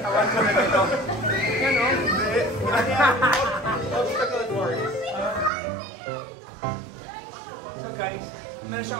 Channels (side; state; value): left; drops out; at 5.5 s